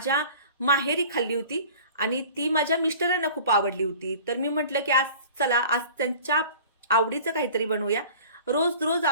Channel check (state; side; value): inverted; both; correlation -0.44